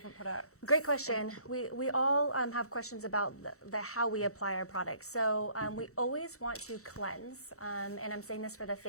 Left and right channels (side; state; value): right; late; 0.64 ms